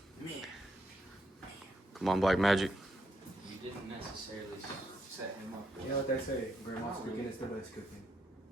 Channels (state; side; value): normal; both; correlation 0.77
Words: Come on, Black Magic. You didn't necessarily set him up. You know what they say? Grandma's cooking is the best cooking.